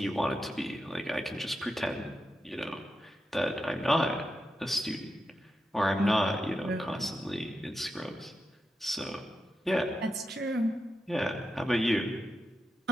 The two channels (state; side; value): normal; both; correlation 0.88